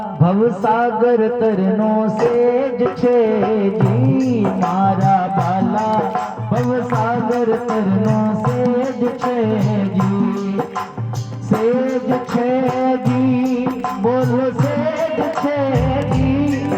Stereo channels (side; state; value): both; identical; correlation 1.00